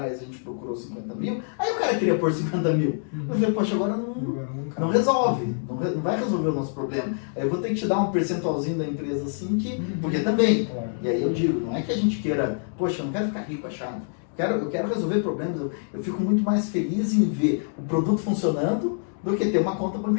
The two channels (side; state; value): right; silent; digital silence